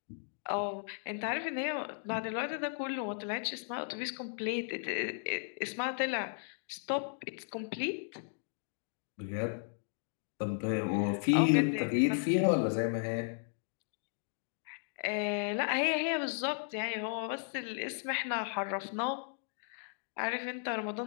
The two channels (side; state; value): right; silent; digital silence